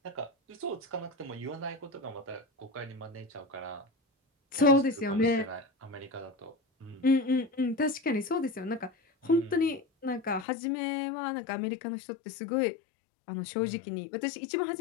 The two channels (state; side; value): drops out; right; at 10.5 s